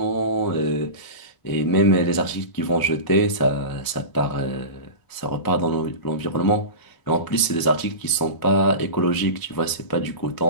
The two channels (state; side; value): late; right; 1.0 ms